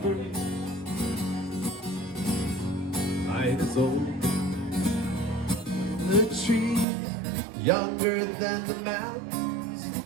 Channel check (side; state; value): left; drops out; at 6.9 s